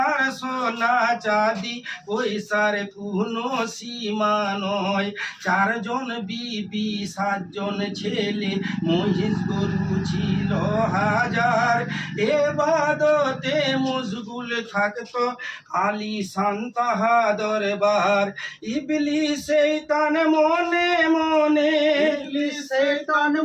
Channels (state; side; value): identical; both; correlation 1.00